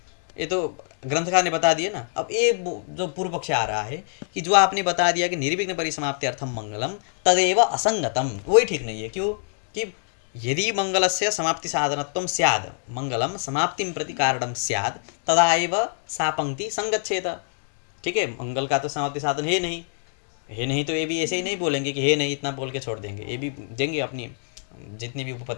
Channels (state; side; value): silent; right; digital silence